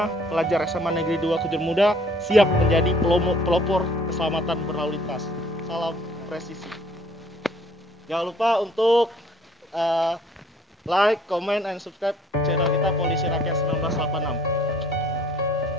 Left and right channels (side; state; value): both; normal; correlation 0.58